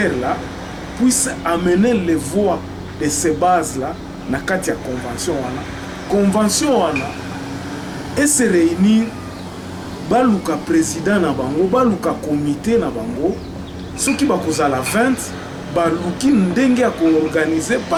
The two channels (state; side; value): identical; both; correlation 1.00